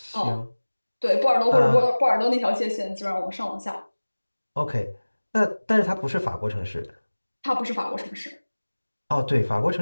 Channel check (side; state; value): both; inverted; correlation -1.00